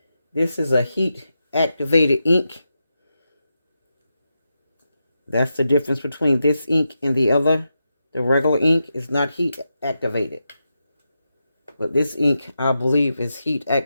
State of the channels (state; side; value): inverted; both; correlation -0.88